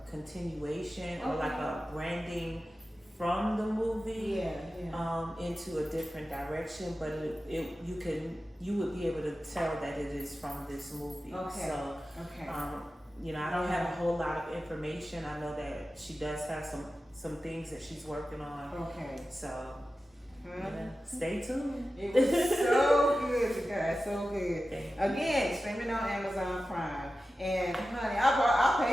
continuation or like a branding from the movie into a different direction, but you would be able to tell that it is from this movie. Okay. So you know, I don't have a whole lot of information. I know that she does have some things that she's working on. Okay. So stay tuned. It was so good, you guys, so good. Again, streaming on Amazon Prime. And honey, I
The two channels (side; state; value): both; normal; correlation 0.94